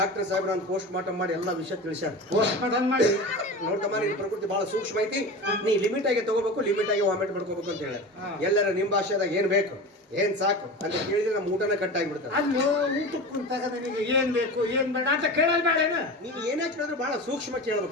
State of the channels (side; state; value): both; normal; correlation 0.30